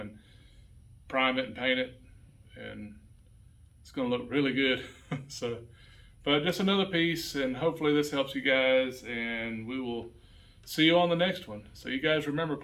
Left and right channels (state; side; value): identical; both; correlation 1.00